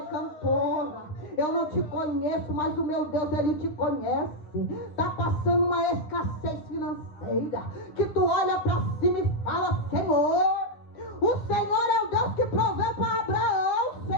cantora, eu não te conheço, mas o meu Deus, Ele te conhece. Está passando uma escassez financeira, que tu olha para cima e fala, Senhor, o Senhor é o Deus que proveu para Abraão,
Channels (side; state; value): right; late; 9.7 ms